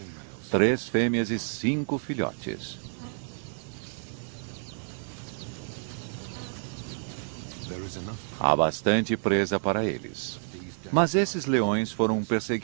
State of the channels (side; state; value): left; silent; 59 dB below the other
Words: 3 fêmeas e 5 filhotes. Há bastante presa para eles. Mas esses leões foram